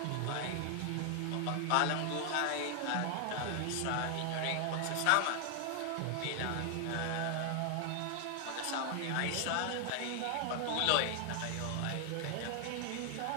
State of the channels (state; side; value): different; both; correlation 0.00